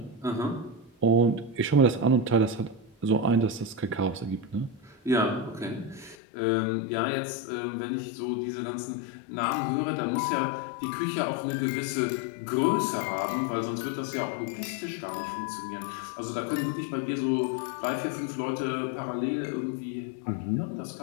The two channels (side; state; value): right; drops out; at 6.2 s